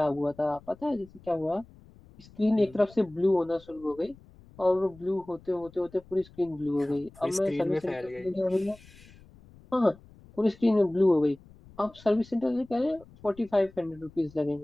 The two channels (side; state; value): left; noise; rumble, 24 dB below the sound